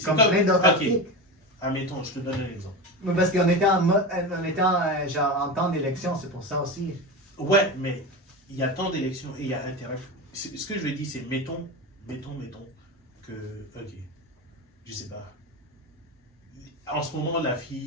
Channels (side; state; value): both; normal; correlation 0.22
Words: comme plein d'autres articles. Admettons, je te donne un exemple. Mais parce qu'on était en temps d'élection, c'est pour ça aussi. Ouais, mais il y a temps d'élection et il y a intérêt. Ce que je veux dire, c'est mettons que, ok, je sais pas. En ce moment, la